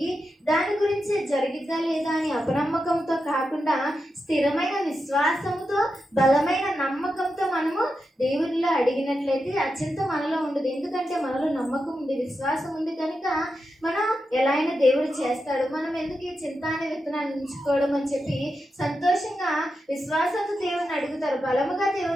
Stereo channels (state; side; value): normal; both; correlation 0.88